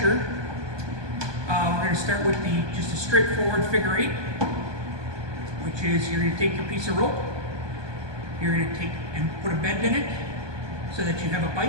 we're going to start with just a straightforward figure 8, which is you're going to take your piece of rope, you're going to take and put a bend in it so that you have a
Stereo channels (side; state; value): left; late; 1.2 ms